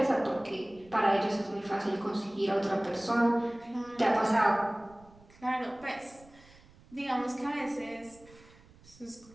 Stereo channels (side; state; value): right; noise; rumble, 25 dB below the sound